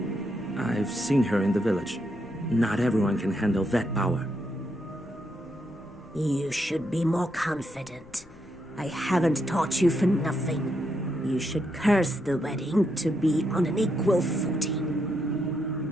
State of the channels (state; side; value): noise; left; rumble, 24 dB below the sound